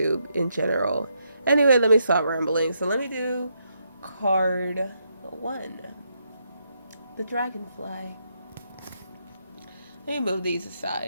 in general. Anyway, let me stop rambling. So let me do card 1, the dragonfly. Let me move these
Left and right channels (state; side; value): inverted; both; correlation -0.79